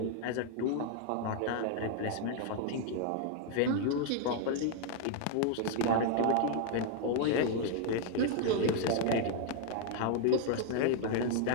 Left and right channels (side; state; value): both; different; correlation 0.00